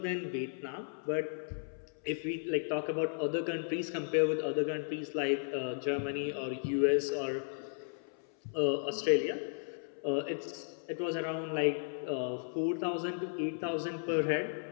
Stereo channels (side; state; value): right; silent; 54 dB below the other